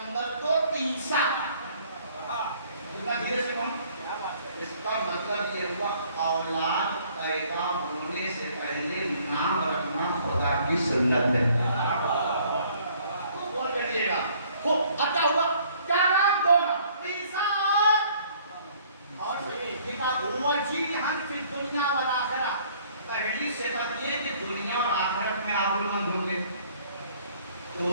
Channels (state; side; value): inverted; both; correlation -0.59